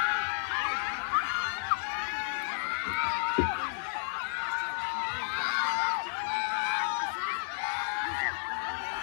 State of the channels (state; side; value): silent; right; digital silence